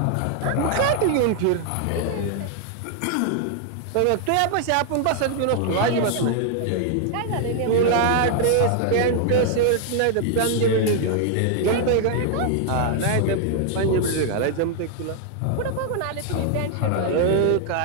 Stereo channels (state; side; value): different; both; correlation 0.00